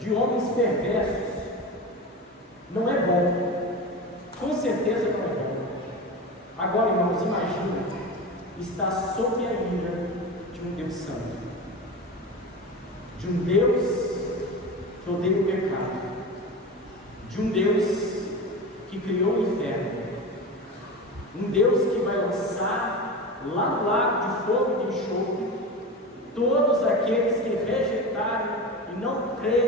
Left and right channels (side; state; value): both; normal; correlation 0.26